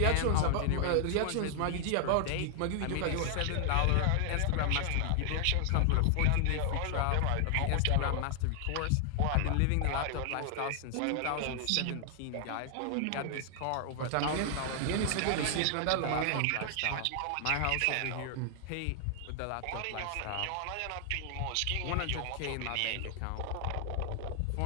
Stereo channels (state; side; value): different; both; correlation 0.00